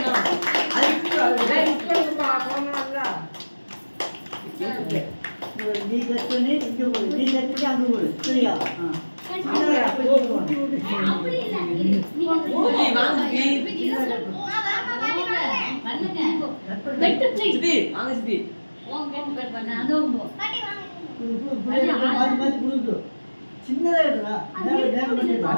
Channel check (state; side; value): inverted; both; correlation -1.00